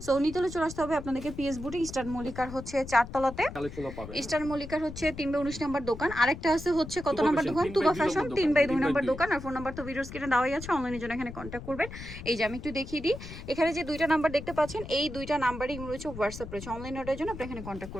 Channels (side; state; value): left; noise; rumble, 12 dB below the sound